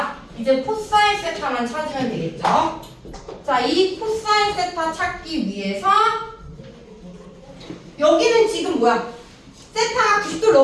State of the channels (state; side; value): identical; both; correlation 1.00